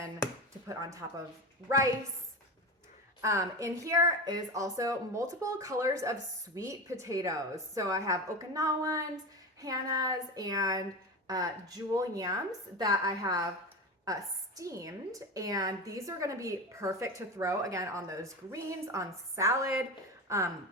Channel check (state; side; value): normal; both; correlation 0.23